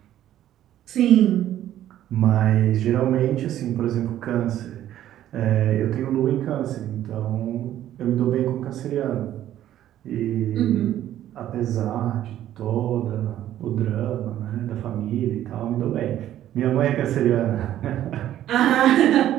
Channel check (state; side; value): quieter; left; 12.3 dB